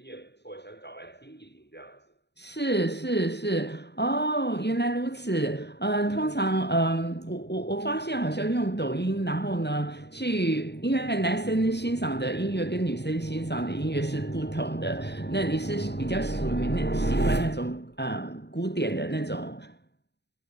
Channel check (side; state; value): right; late; 0.49 ms